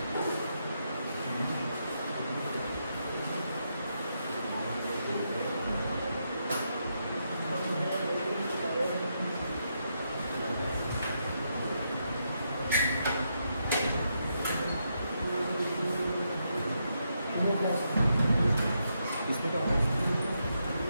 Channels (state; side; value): inverted; both; correlation -0.81